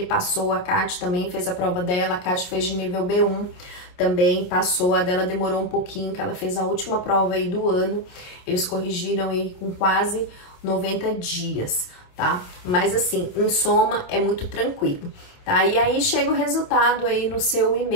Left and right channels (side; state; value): right; late; 28 ms